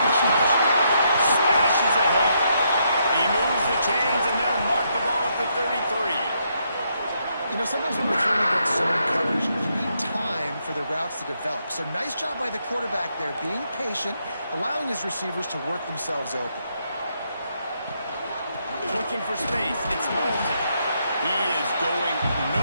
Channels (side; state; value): both; inverted; correlation -0.77